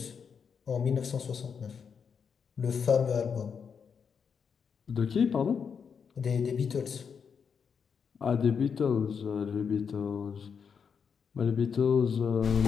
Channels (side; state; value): right; quieter; 6.5 dB